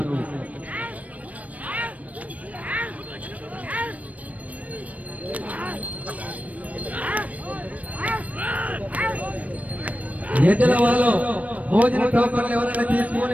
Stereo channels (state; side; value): late; left; 0.069 ms